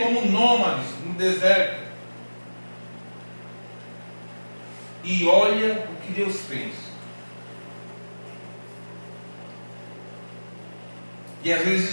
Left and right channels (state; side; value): inverted; both; correlation -1.00